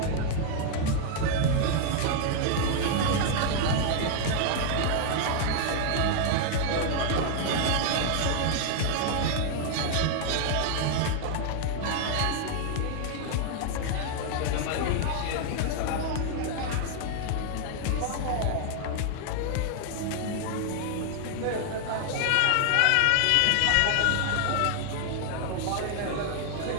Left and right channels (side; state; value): both; different; correlation 0.00